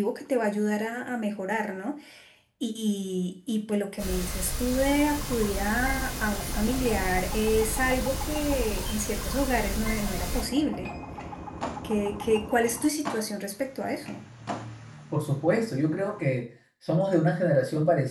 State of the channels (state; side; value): identical; both; correlation 1.00